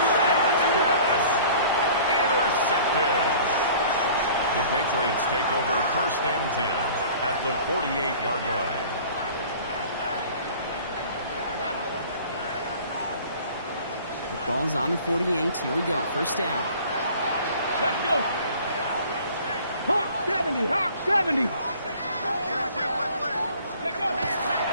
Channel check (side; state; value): both; inverted; correlation -0.48